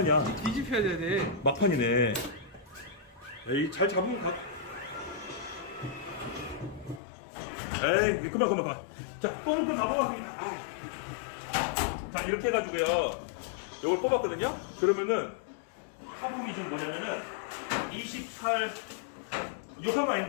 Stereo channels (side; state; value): right; drops out; at 7.0 s